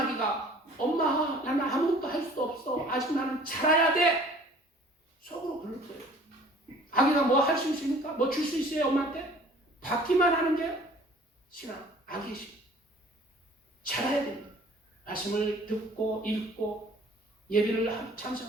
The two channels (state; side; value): normal; both; correlation 0.51